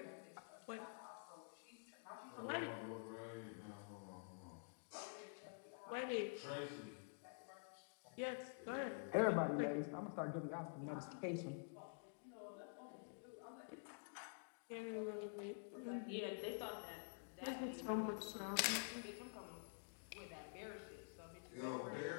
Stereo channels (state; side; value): silent; right; digital silence